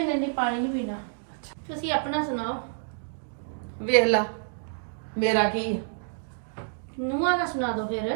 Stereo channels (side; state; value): left; silent; digital silence